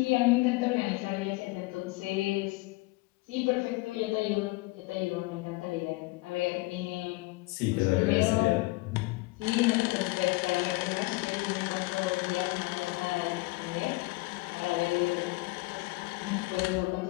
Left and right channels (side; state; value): right; quieter; 23.1 dB